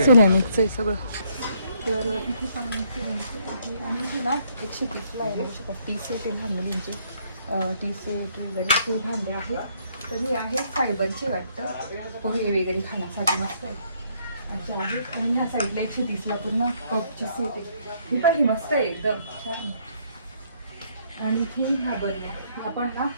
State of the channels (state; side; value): inverted; both; correlation -0.68